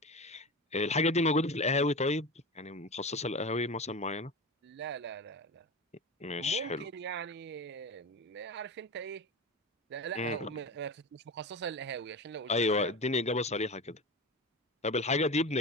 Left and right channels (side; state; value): both; normal; correlation 0.26